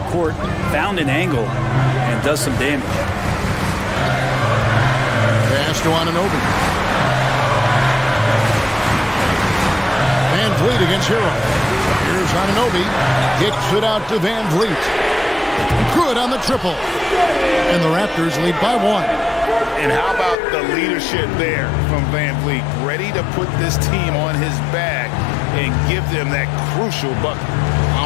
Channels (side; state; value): right; drops out; at 20.4 s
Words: court, found an angle, and does some damage. Pass to Anunoby. Van Vliet against Hero. Here's Anunoby. Kicks it out to Van Vliet. Good on the triple. And the Raptors lead by 1. And how about the leadership there from Van Vliet? Ready to put this team on his back and give them that crucial bucket.